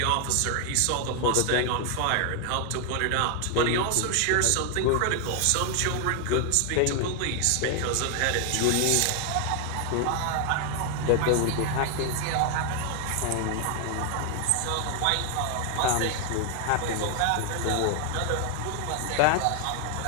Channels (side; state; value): both; different; correlation 0.00